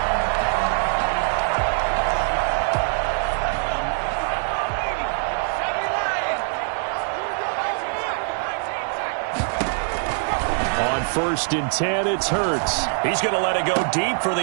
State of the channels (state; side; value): silent; left; digital silence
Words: First and 10, it's Hurts. He's going to let it go deep for the